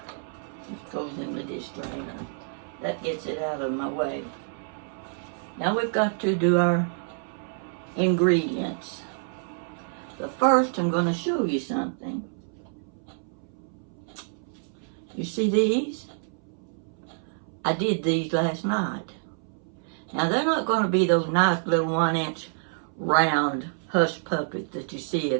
goes in the dish drainer. That gets it out of my way. Now we've got to do our ingredients. But first, I'm going to show you something. You see these? I did these last night. Now, they're not going to be those nice little 1-inch round Hush Puppies that you see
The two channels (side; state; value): left; silent; 60 dB below the other